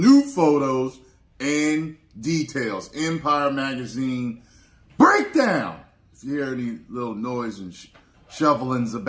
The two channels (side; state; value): both; identical; correlation 1.00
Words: photos and details. Empire Magazine breakdown. If you hear any little noise and shovelings